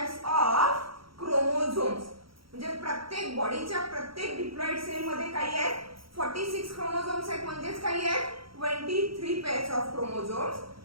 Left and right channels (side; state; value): left; late; 0.75 ms